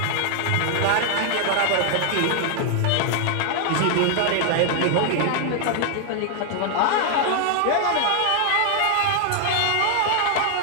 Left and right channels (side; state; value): both; different; correlation 0.00